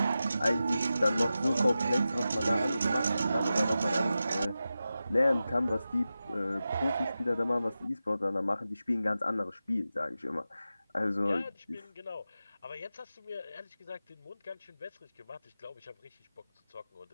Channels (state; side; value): inverted; both; correlation -0.93